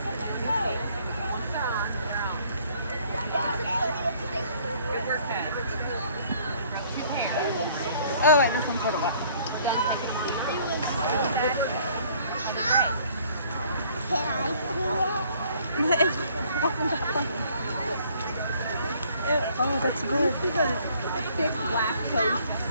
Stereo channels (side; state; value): both; inverted; correlation -0.59